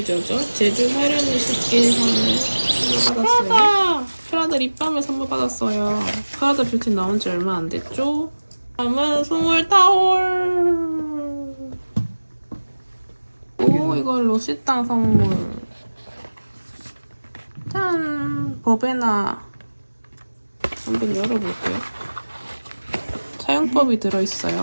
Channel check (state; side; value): inverted; both; correlation -1.00